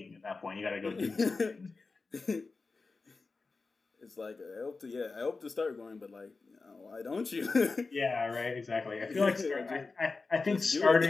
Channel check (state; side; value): quieter; right; 4.0 dB